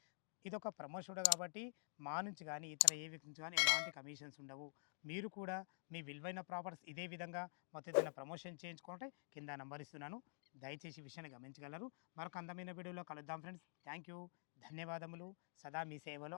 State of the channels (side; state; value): right; silent; digital silence